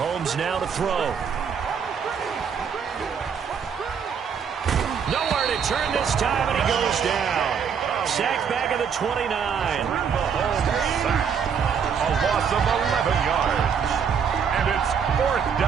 now to throw. Nowhere to turn this time, and he goes down. Sacked back at the 29. Mahomes sacked. A loss of 11 yards. And it's fourth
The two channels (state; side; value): quieter; left; 6.9 dB